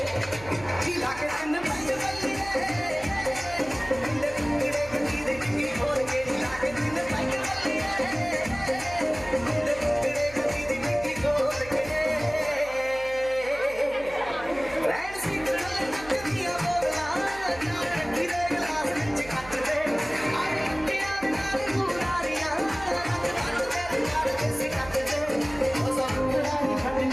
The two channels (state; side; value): noise; right; hum, 18 dB below the sound